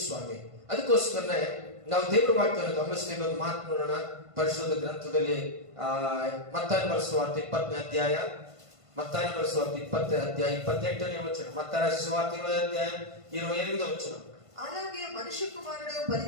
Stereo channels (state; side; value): late; left; 1.5 ms